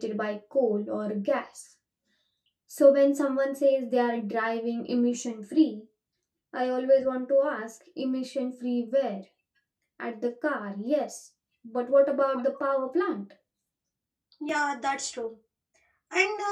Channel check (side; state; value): both; identical; correlation 1.00